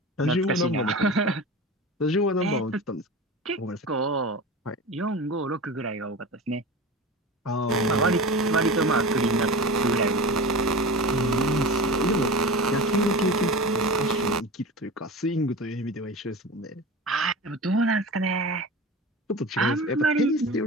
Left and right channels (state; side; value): normal; both; correlation 0.32